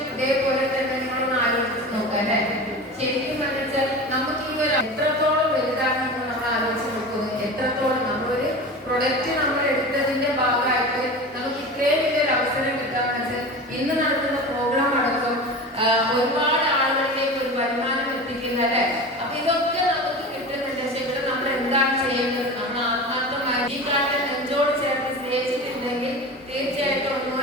ഇതേപോലെ തന്നെ നിങ്ങളൊന്ന് ആലോചിച്ച് നോക്കാം അല്ലെ? എത്രത്തോളം വലുതാണെന്ന് നമ്മൾ ആലോചിച്ച് നോക്കുന്നു. എത്രത്തോളം നമ്മളൊരു പ്രൊഡക്റ്റ് നമ്മൾ എടുത്തതിന്റെ ഭാഗമായിട്ട് നമുക്ക് ഇത്രയും വലിയൊരു അവസരം കിട്ടാന്ന് വെച്ചാൽ ഇന്ന് നടത്തുന്ന പ്രോഗ്രാം അടക്കം ഒരുപാട് ആളുകളിലേക്ക് ഒരു വരുമാനം എത്തിക്കുന്ന അല്ലേ. അപ്പൊ ഇതൊക്കെ നമുക്ക് കിട്ടുന്നുണ്ട്. പക്ഷെ ഇവിടെ നമ്മൾ എന്താണ് ചെയ്യേണ്ടത്? നമ്മൾ ആത്മാർത്ഥമായി ഈ കാലത്ത് നെഞ്ചോട് ചേർത്ത് സ്നേഹിച്ചിട്ടുണ്ടെങ്കിൽ തീർച്ചയായിട്ടും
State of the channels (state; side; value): normal; both; correlation 0.31